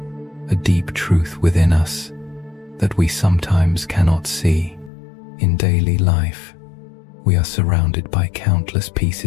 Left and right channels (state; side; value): drops out; right; at 4.9 s